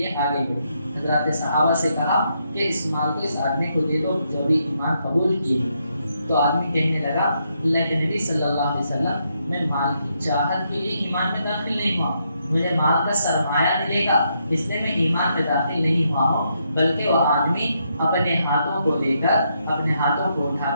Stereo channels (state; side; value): inverted; both; correlation -0.78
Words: آگے بڑھے۔ حضرات صحابہ سے کہا کہ اس مال کو اس آدمی کو دے دو جو بھی ایمان قبول کیے۔ تو آدمی کہنے لگا اللہ کے نبی صلی اللہ علیہ وسلم میں مال کی چاہت کے لیے ایمان میں داخل نہیں ہوا، مجھے مال کا سرمایہ ملے گا اس لیے میں ایمان میں داخل نہیں ہوا ہوں، بلکہ وہ آدمی اپنے ہاتھوں کو لے کر اپنے ہاتھوں کو اٹھا